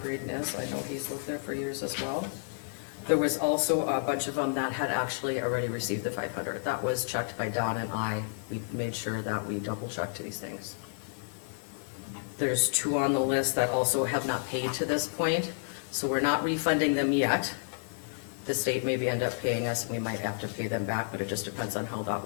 Braden is. I know he's lived there for years as well. There was also a bunch of them that had actually already received the 500. That was checked by Don and I. We made sure that we double checked these things. There's two on the list that also have not paid to this point, so we're not refunding them yet. The state maybe end up paying us, and we might have to pay them back, but it just depends on how that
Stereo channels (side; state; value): right; silent; 57 dB below the other